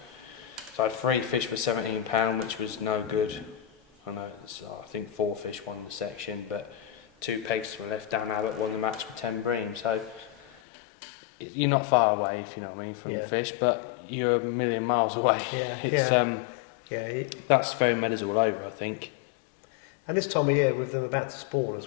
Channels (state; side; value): drops out; right; at 10.5 s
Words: So I had 3 fish for £17, which was no good. I know, I think 4 fish won the section, but 2 pegs to my left. Dan Abbott won the match with 10 bream. So you're not far away, if you know what I mean, from the fish, but you're a million miles away. That's very meadows all over, I think. And this time of year, with them about to spawn